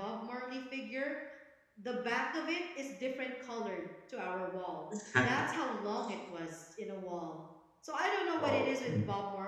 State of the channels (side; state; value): both; identical; correlation 1.00